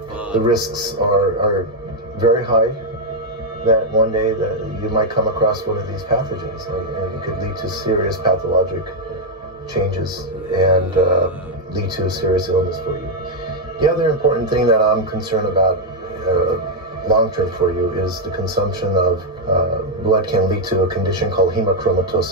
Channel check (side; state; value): both; normal; correlation 0.00